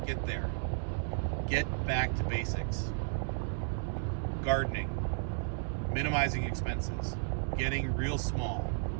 Get there. Get back to basics. Gardening. minimizing expenses, getting real small,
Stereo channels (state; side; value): silent; left; 55 dB below the other